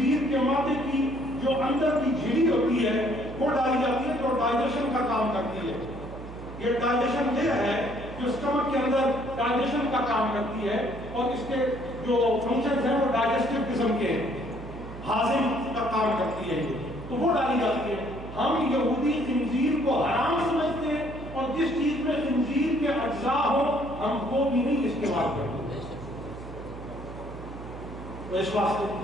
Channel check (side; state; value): right; noise; hum, 12 dB below the sound